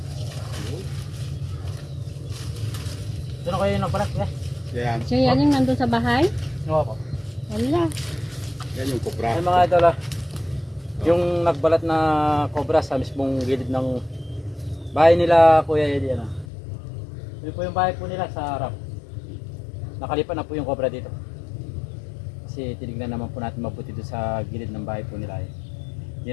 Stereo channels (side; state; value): right; drops out; at 16.4 s